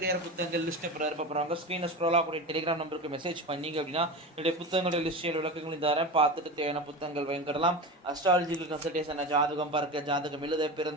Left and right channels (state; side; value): normal; both; correlation 0.26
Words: புத்தகங்கள் லிஸ்ட்டை போகிறாங்க. ஸ்க்ரீனில் ஸ்க்ரோலாக கூடிய டெலிகிராம் நம்பருக்கு மெசேஜ் பண்ணிங்க அப்படின்னா என்னுடைய புத்தகங்களுடைய லிஸ்டில் விளக்கங்கள் தரேன். பார்த்துட்டு தேவையான புத்தகங்கள் வாங்கிடலாம். அஸ்ட்ராலஜிக்கல் கன்சல்டேஷன், ஜாதகம் பார்க்க, ஜாதகம் எழுத,